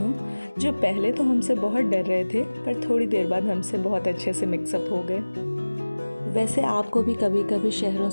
जो पहले तो हमसे बहुत डर रहे थे पर थोड़ी देर बाद हमसे बहुत अच्छे से मिक्सअप हो गए। वैसे आपको भी कभी कभी शहरों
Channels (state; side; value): inverted; both; correlation -1.00